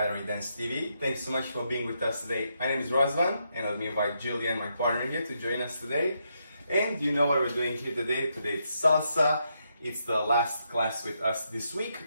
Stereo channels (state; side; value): inverted; both; correlation -0.80